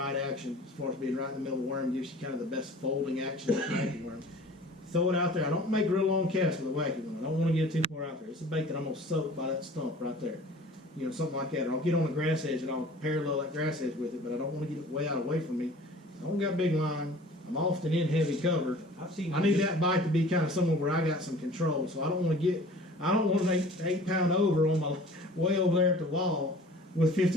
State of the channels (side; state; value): both; normal; correlation 0.46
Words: action as far as being right in the middle of the worm. Gives you kind of the best folding action of the wacky worm. Throw it out there. I don't make real long casts with a wacky one. I don't want to get too far out there. It's a bait that I'm going to soak by that stump right there. You know, something like that. Or I'll get on the grass edge and I'll parallel that grass edge with it, but I don't want to get it way out away from me. I don't got big line. I'm often in heavy cover. I need that bite to be kind of somewhere where I got some control. So I don't want an 8 pound over on my way over there at the wall. with